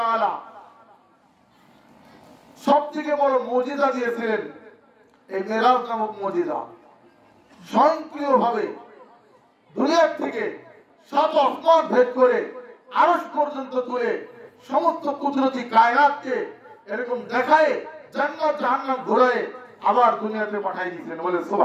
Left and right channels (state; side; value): identical; both; correlation 1.00